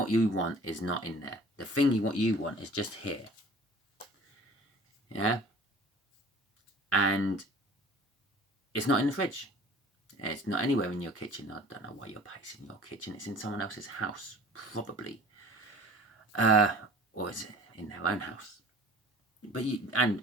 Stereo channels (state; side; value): normal; both; correlation 0.46